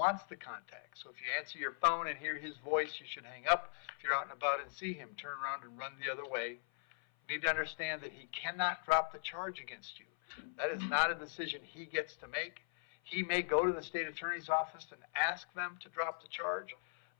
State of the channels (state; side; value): silent; right; 52 dB below the other